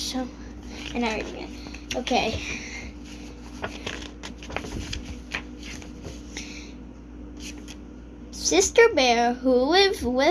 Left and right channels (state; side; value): identical; both; correlation 1.00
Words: And I read again. Okay. Sister Bear, who lived